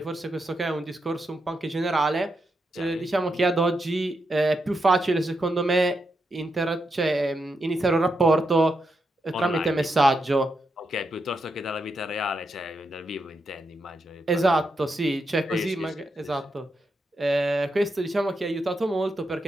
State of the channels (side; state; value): both; normal; correlation 0.84